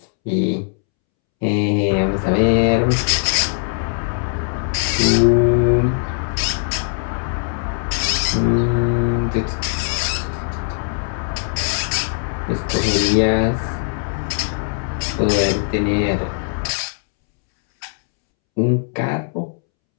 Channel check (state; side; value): silent; right; 66 dB below the other